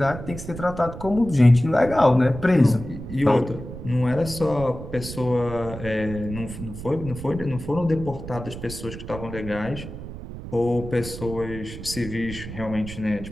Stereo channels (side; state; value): right; noise; rumble, 11 dB below the sound